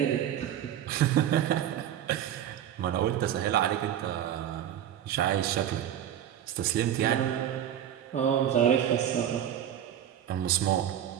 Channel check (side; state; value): left; quieter; 10.5 dB